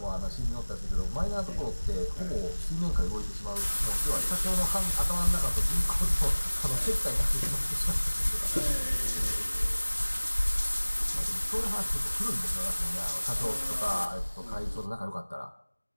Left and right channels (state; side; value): inverted; both; correlation -1.00